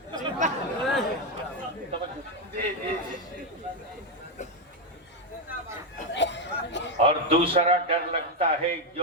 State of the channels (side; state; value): both; normal; correlation 0.05